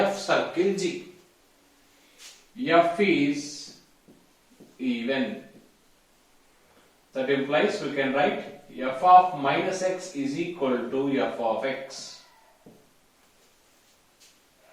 circle g. F is even. That implies we can write f of minus x is equal to f of x.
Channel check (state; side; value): identical; both; correlation 1.00